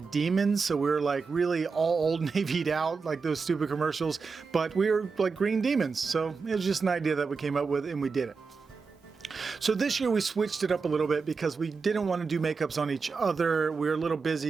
demons. So we were like really all Old Navy'd out, like those stupid commercials, but we were like green demons. So it was just an idea that we came up with and we did it. So this year we switched it up a little bit because we didn't want to do makeups on each other. We were a little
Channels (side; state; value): left; quieter; 4.9 dB